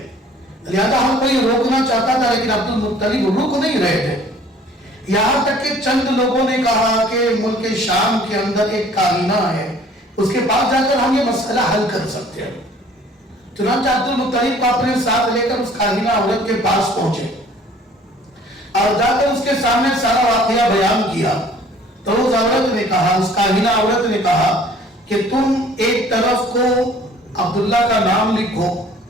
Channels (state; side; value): normal; both; correlation 0.53